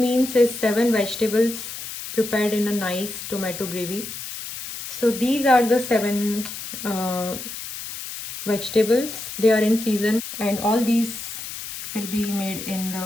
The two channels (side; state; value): left; noise; hiss, 9 dB below the sound